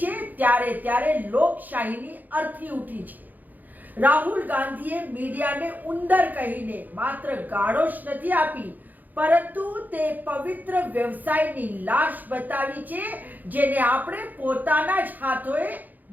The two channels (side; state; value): left; late; 0.083 ms